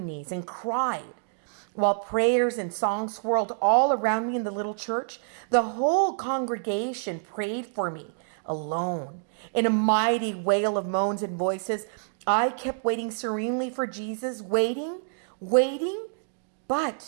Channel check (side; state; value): left; silent; digital silence